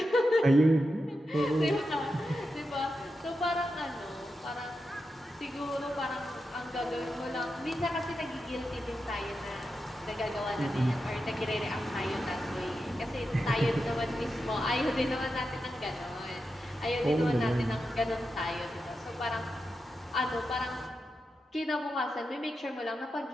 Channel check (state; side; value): normal; both; correlation 0.89